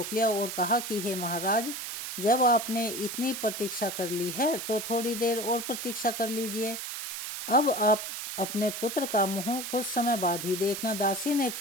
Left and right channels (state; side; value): noise; right; hiss, 6 dB below the sound